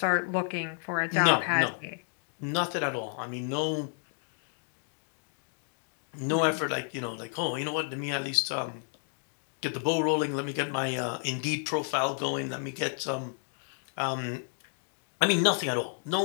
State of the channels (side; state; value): right; silent; 57 dB below the other